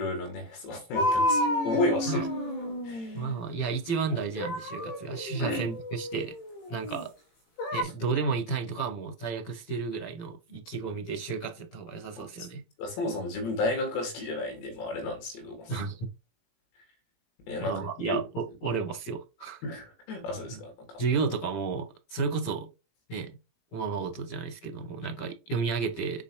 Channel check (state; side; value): late; right; 18 ms